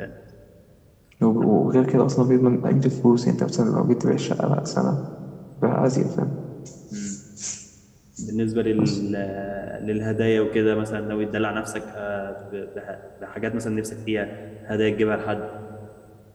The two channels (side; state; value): both; identical; correlation 1.00